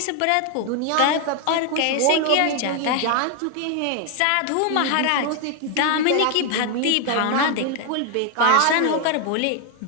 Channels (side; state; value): both; different; correlation 0.01